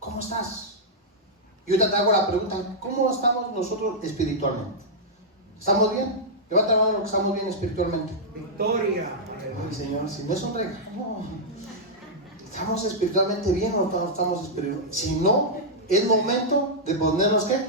estás? Y ahorita te hago la pregunta, ¿cómo estamos nosotros espiritualmente? ¿Estamos bien? Levanta la mano que estamos bien espiritualmente. Victoria. Ay, Señor, si no es un regalo, ¿estamos espiritualmente bien o no estamos espiritualmente? Si no, es momento de ponernos ¿qué?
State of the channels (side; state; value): both; normal; correlation -0.08